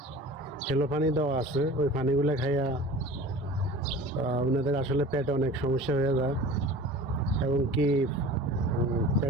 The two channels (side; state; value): both; normal; correlation 0.40